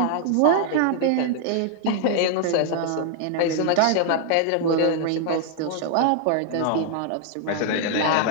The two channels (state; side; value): different; both; correlation 0.00